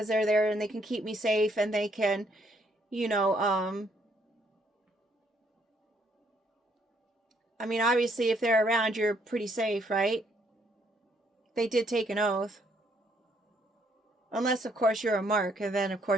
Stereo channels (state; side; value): normal; both; correlation 0.69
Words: they're there and they can keep me safe, and they can, obviously if they're around, you're pretty safe, right? They did take an oath. Unless, of course, you're a mark, and then, of